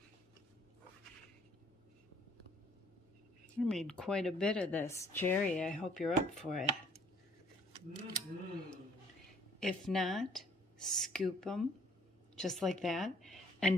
I made quite a bit of this. Jerry, I hope you're up for it. If not, scoop them just like that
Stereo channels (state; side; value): normal; both; correlation 0.59